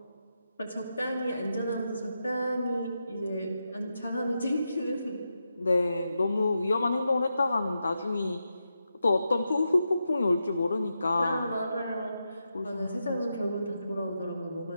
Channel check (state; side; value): inverted; both; correlation -0.87